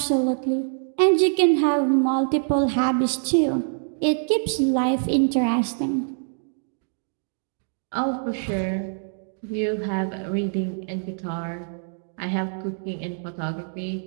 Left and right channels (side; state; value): left; silent; digital silence